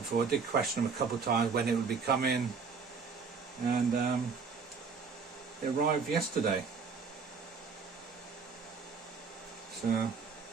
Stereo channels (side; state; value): left; quieter; 5.3 dB